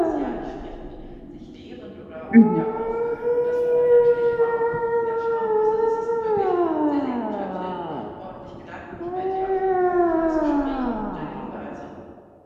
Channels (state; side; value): identical; both; correlation 1.00